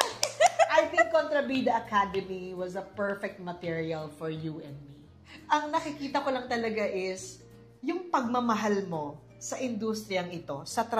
I think Kontrabida Academy was a perfect material for you and me. Ang nakikita ko lang talaga is yung pagmamahal mo sa industriyang ito, sa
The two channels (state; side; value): identical; both; correlation 1.00